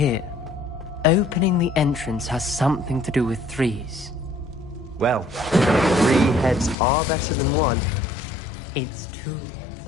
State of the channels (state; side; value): drops out; right; at 6.8 s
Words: Opening the entrance has something to do with threes. Well, 3 heads are better than 1. It's 2 heads